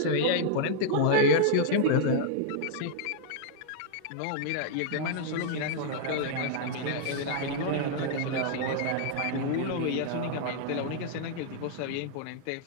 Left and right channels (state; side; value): different; both; correlation -0.01